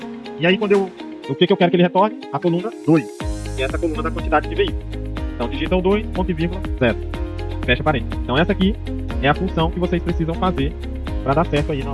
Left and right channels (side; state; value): both; identical; correlation 1.00